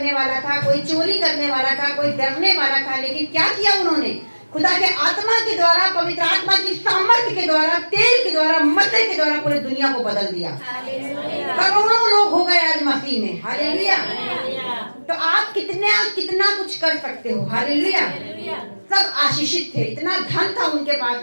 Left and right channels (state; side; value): inverted; both; correlation -1.00